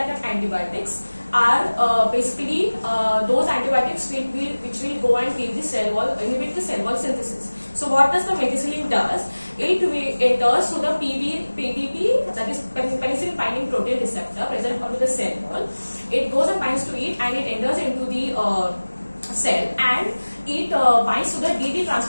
antibiotics are basically those antibiotics which will go and kill the cell wall, inhibit the cell wall synthesis. So what does the Methicillin does? It enters through the PBP, that is penicillin binding protein receptor present onto the cell wall. It goes and binds to it, and it enters into the cell, and it binds to the DD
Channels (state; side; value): inverted; both; correlation -1.00